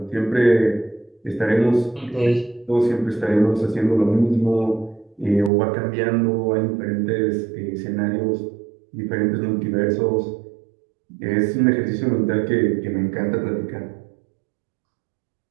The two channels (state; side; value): drops out; left; at 5.5 s